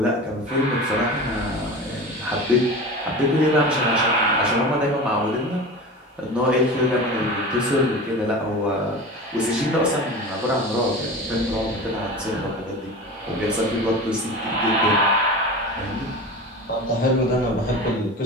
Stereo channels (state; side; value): normal; both; correlation 0.31